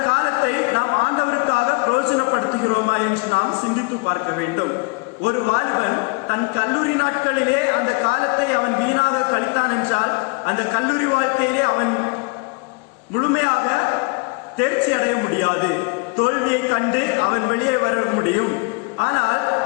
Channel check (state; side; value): quieter; right; 31.7 dB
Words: காலத்தை நாம் ஆண்டவருக்காக பிரயோஜனப்படுத்துகிறோமா என்று நாம் சிந்தித்து பார்க்க வேண்டும். ஒரு வாலிபன் தன் கல்லூரி நாட்களிலே அந்த காலத்தை அவன் வீணாக கழித்தான் என்றால் அந்த கல்லூரி வாழ்க்கையிலே அவன் முழுமையாக தேர்ச்சி அடைய முடியாது. தோல்வியை கண்டு அவன் வெளியே வர முடியும். ஆனால்